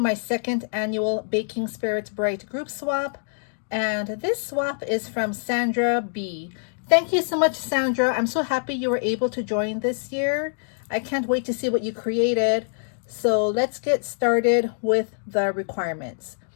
second annual Baking Spirits Bright group swap. And this swap is from Sandra B. Thank you so much, Sandra. I'm so happy you were able to join this year. I can't wait to see what you created. So let's get started with the requirements.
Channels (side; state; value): right; silent; digital silence